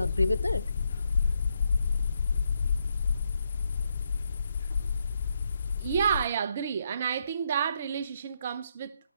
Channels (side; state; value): both; inverted; correlation -0.78